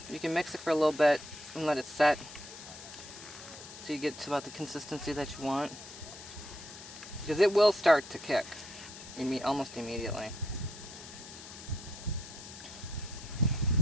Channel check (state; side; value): noise; left; hiss, 14 dB below the sound